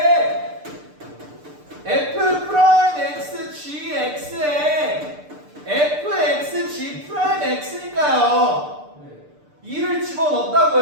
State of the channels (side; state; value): left; late; 6.7 ms